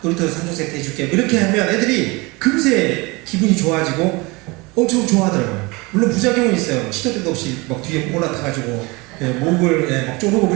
놀이터 3종 세트 해줄게 이렇게 하면 애들이 금세 기분이 좋아지고 엄청 좋아하더라고요. 물론 부작용은 있어요. 시도 때도 없이 막 뒤에 올라타가지고 목을 막 쪼르고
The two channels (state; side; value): quieter; left; 25.3 dB